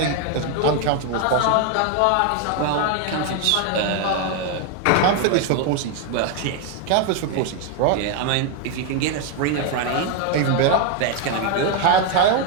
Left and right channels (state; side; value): different; both; correlation 0.01